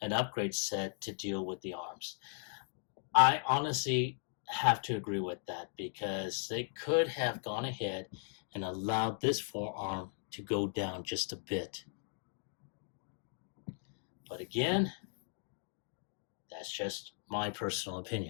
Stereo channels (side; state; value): right; silent; digital silence